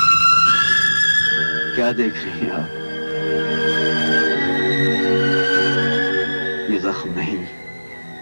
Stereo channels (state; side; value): inverted; both; correlation -1.00